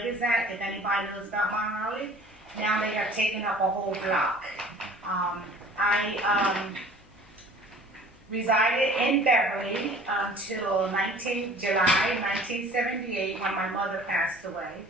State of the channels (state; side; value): noise; left; hum, 29 dB below the sound